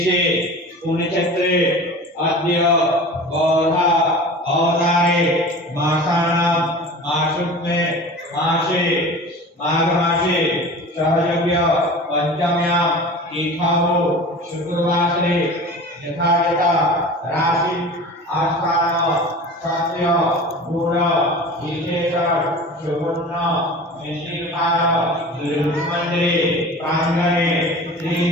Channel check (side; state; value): both; normal; correlation 0.37